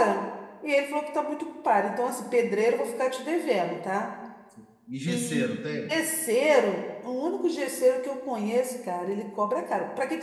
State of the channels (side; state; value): both; identical; correlation 1.00